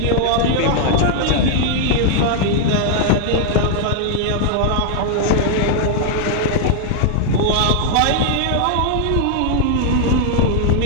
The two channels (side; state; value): both; different; correlation -0.01